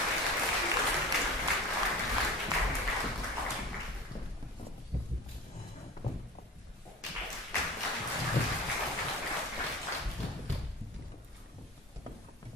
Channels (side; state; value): both; normal; correlation 0.36